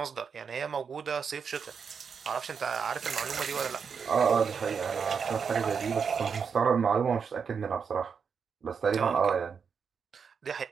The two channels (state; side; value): quieter; left; 6.3 dB